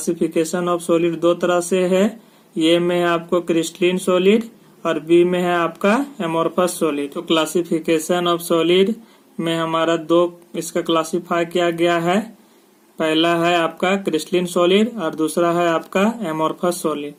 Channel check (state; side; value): identical; both; correlation 1.00